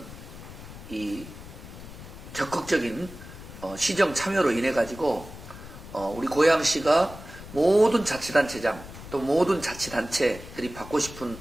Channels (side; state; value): left; noise; rumble, 14 dB below the sound